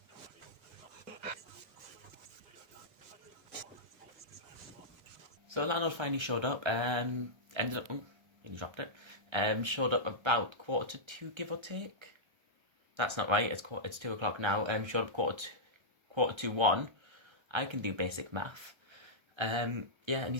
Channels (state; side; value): late; left; 1.3 ms